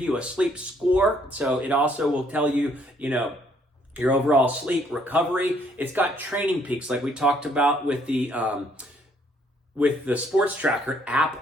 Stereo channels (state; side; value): normal; both; correlation 0.66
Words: you a sleep score, so it also will tell you, your overall sleep recovery. It's got training peaks, like we talked about with the SportsTracker